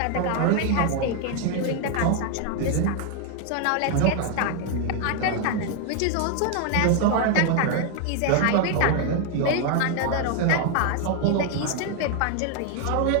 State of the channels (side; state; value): both; different; correlation 0.00